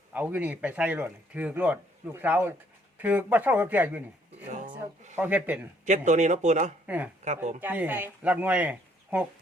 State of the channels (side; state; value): both; normal; correlation 0.65